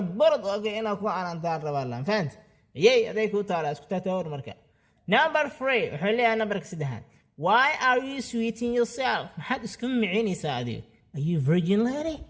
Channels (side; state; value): both; identical; correlation 1.00